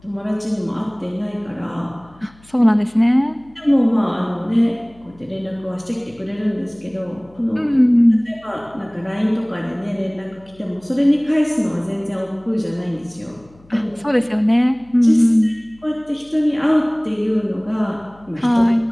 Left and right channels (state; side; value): noise; left; hum, 27 dB below the sound